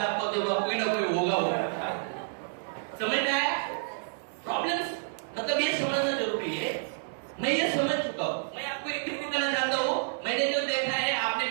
आपको तो कोई ना कोई होगा। समझ में आया? प्रॉब्लम्स मतलब ये समझना जरूरी है। मैं ये समझ चुका हूँ। मैं आपको एक चीज बताना चाहता हूँ, मैंने जो देखा है आपने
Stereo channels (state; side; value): silent; left; digital silence